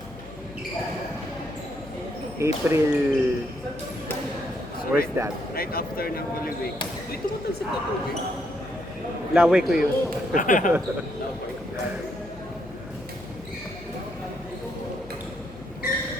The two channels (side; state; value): left; noise; hum, 17 dB below the sound